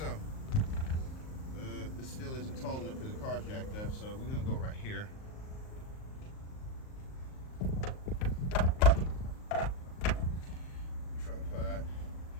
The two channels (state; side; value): late; right; 38 ms